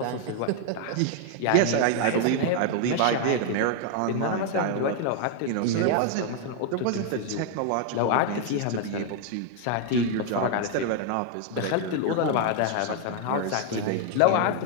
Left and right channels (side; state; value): both; different; correlation 0.00